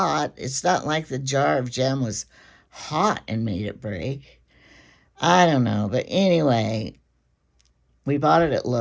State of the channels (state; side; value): identical; both; correlation 1.00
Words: It's not like the jar of jam was hot and made it break. I don't know, but anyway, we bought it at